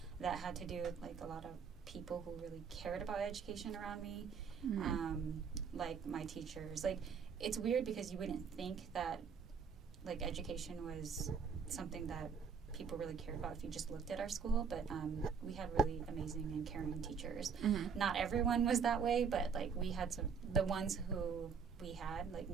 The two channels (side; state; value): left; quieter; 6.1 dB